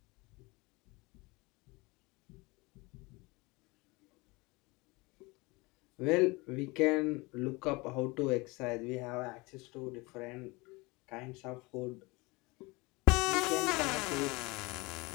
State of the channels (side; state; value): right; quieter; 24.8 dB